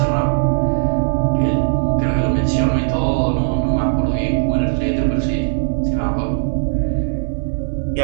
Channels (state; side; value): silent; left; digital silence